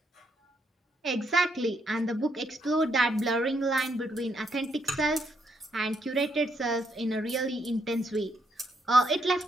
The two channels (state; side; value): normal; both; correlation 0.75